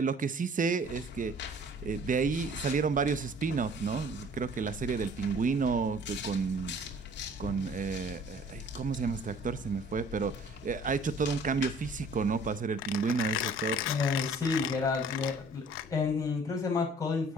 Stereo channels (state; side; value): normal; both; correlation 0.53